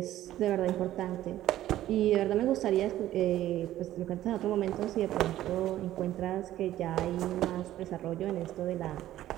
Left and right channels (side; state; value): left; quieter; 13.6 dB